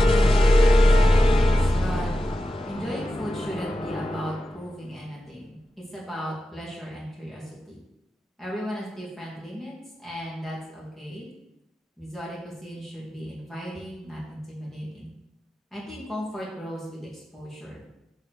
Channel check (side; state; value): both; normal; correlation 0.92